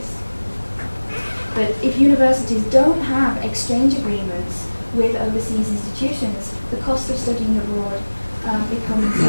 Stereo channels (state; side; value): inverted; both; correlation -1.00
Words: But if universities don't have exchange agreements with overseas institutions, the cost of studying abroad becomes a